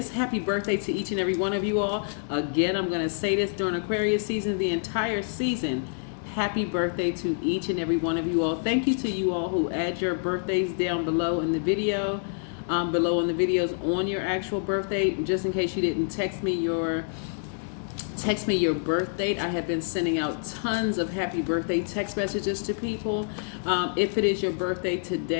Happy birthday to each and every one of you all. Again, I'm going to say this during Aquarius season, the entire season. Happy birthday to each and every one of you all. Thank you to you all who add your birthdays down below in the video, below in the videos on your actual birthday. Just in case you didn't text me your birth date, I have been sending out tons of happy birthday text messages to people. If it is your birthday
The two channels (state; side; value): silent; right; digital silence